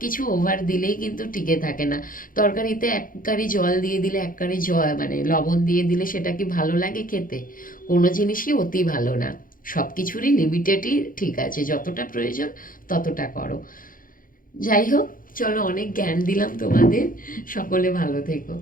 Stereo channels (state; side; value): late; right; 0.40 ms